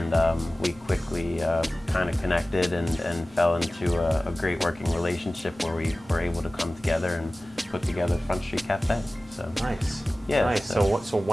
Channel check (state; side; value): normal; both; correlation 0.97